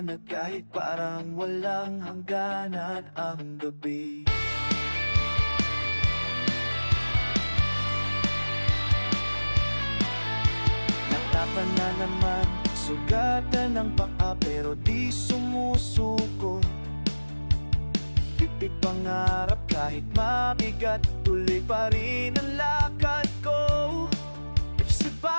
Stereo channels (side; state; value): both; inverted; correlation -1.00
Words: kahit parang walang hangganan ang gabi. Natapan na naman, sugatan ng paa pero di sumusuko. Pipig pangarap kahit mabigat, tuloy pa rin ang lakad ko. Sa